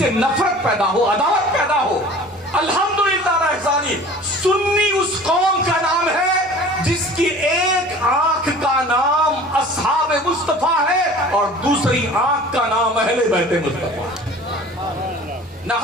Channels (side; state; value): both; normal; correlation 0.44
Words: نفرت پیدا ہو، عداوت پیدا ہو. الحمدللہ رحمانی سنی اس قوم کا نام ہے جس کی ایک آنکھ کا نام اصحاب مصطفیٰ ہے اور دوسری آنکھ کا نام اہل بیت مصطفیٰ. نہ